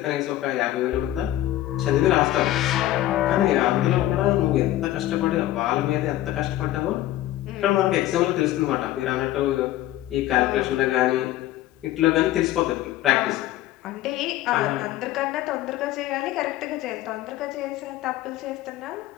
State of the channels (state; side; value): quieter; right; 14.5 dB